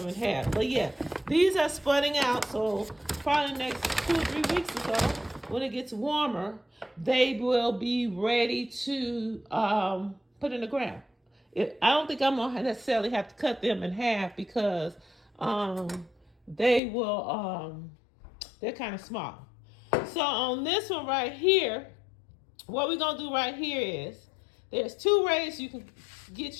in half. But yeah, these are spudding out. So probably the next 2 or 3 weeks or so, when it gets warmer, they will be ready to put in the ground. I don't think I'm gonna necessarily have to cut them in half because they will. They're kind of small. So on this one right here, what we're going to do right here is, there's 2 ways you can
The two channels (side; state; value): right; drops out; at 16.8 s